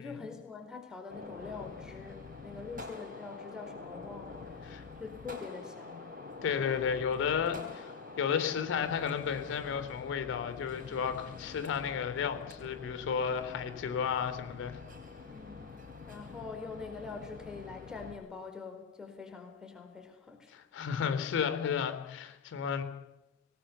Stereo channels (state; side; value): quieter; right; 6.4 dB